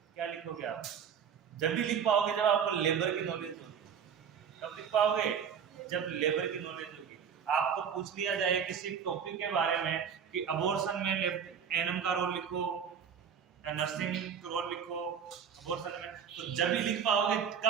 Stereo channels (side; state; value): left; quieter; 7.4 dB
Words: क्या लिखोगे आप? जब भी लिख पाओगे जब आपको लेबर की नॉलेज होगी। कब लिख पाओगे? जब लेबर की नॉलेज होगी। आपको पूछ लिया जाए किसी टॉपिक के बारे में कि अबॉर्शन में एनम का रोल लिखो या नर्सिंग का रोल लिखो अबॉर्शन में, तो जब भी लिख पाओगे